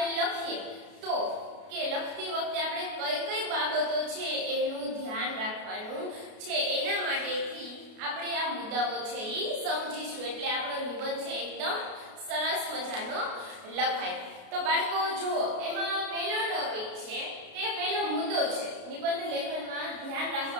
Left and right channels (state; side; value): late; left; 33 ms